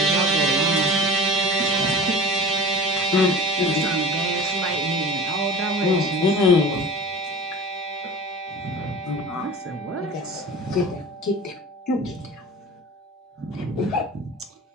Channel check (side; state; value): both; normal; correlation 0.36